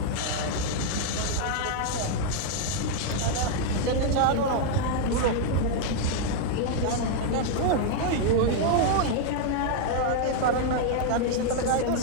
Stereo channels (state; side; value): different; both; correlation -0.01